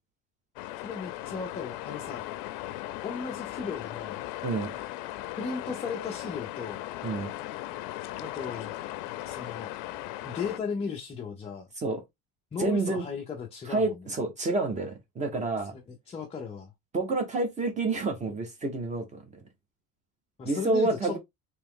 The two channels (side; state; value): both; normal; correlation 0.30